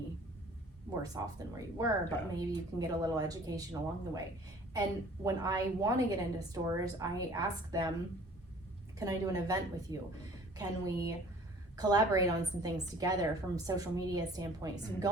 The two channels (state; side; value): normal; both; correlation 0.51